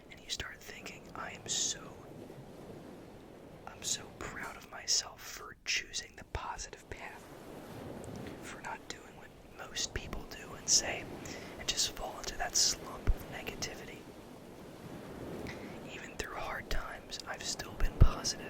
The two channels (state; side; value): identical; both; correlation 1.00